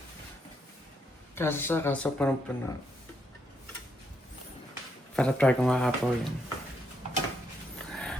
Kaso punong-puno. Para try kung makapaw yan.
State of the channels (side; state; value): both; normal; correlation 0.77